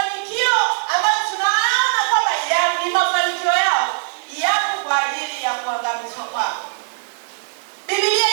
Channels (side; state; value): left; silent; digital silence